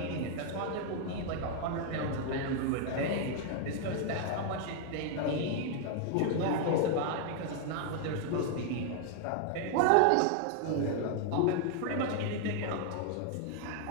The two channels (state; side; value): different; both; correlation 0.00